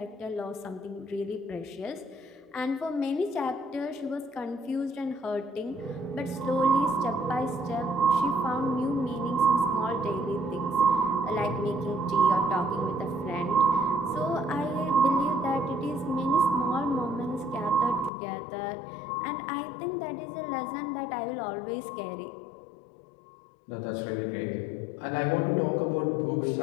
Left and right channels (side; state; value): right; drops out; at 18.1 s